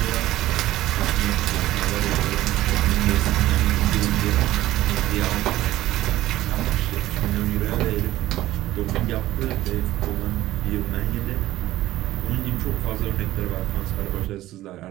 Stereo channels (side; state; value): left; quieter; 15.4 dB